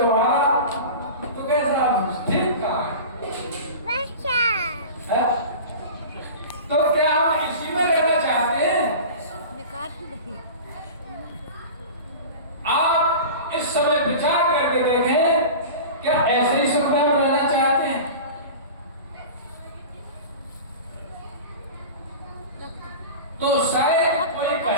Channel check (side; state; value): both; inverted; correlation -0.34